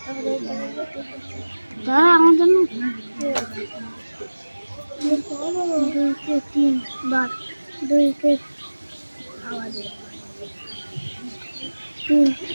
আমার জন্য দুইকে তিন বার দুইকে তিন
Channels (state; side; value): inverted; both; correlation -1.00